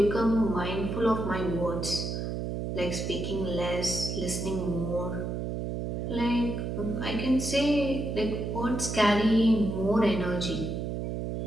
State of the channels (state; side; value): noise; right; hum, 3 dB below the sound